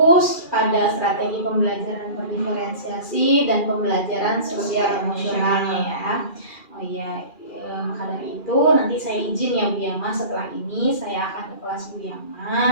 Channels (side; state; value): right; late; 2.4 ms